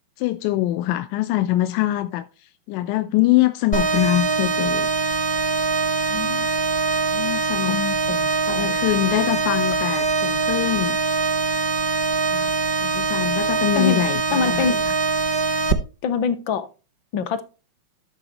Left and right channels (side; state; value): right; late; 5.2 ms